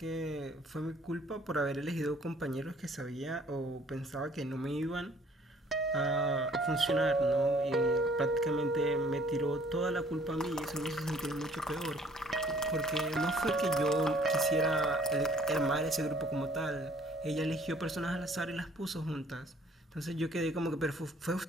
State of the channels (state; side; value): normal; both; correlation 0.58